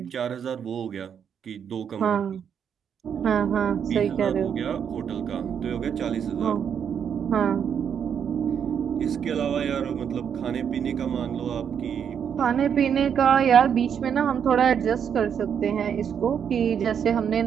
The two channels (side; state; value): left; quieter; 7.9 dB